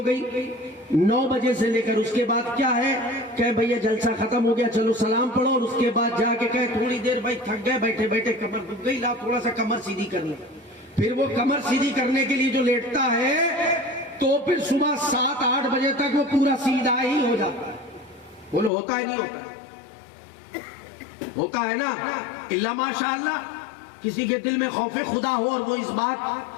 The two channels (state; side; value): drops out; right; at 18.7 s